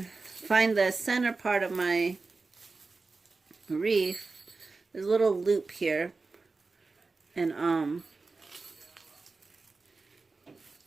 the center part of my wreath. There's a little loop here, and I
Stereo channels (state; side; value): quieter; left; 3.9 dB